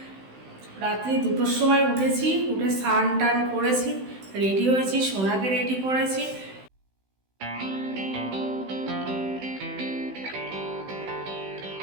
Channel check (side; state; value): left; late; 16 ms